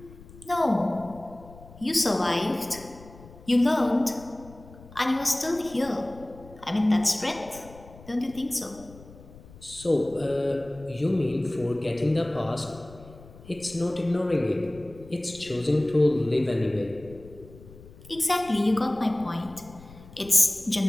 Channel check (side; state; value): left; noise; rumble, 20 dB below the sound